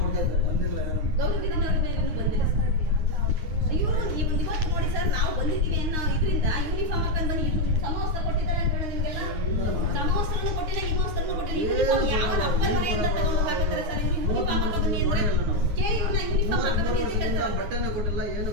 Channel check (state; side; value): late; left; 9.6 ms